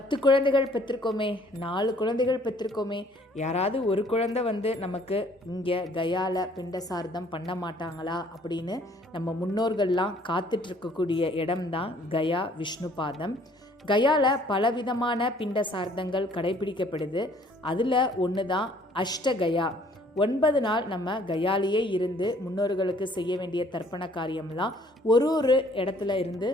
குழந்தைகள் பெற்றிருக்கோமே, 4 குழந்தைகள் பெற்றிருக்கோமே, யாராவது ஒரு குழந்தை நமக்கு இங்கே கயாவில் பிண்ட சார்த்தம் பண்ண மாட்டாங்களா அப்படின்னு நம்ம முன்னோர்கள்லாம் காத்துட்ருக்கக்கூடிய இடம்தான் கயா விஷ்ணு பாதம். கயாவில் பலவிதமான பிண்ட சார்த்தங்கள் கடைபிடிக்கப்படுது. அதில் ஒன்று தான் அஷ்டகயா. 9 நாள் நம்ம கயாலேயே இருந்து முன்னோர்களுக்கு செய்ய வேண்டிய தர்ப்பண காரியம்லாம் ஒரு இடத்துல இருந்து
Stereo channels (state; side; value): normal; both; correlation 0.59